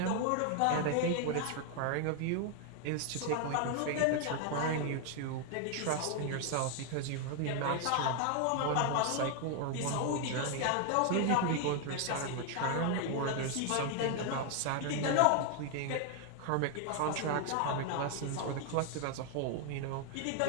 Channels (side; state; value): both; different; correlation 0.00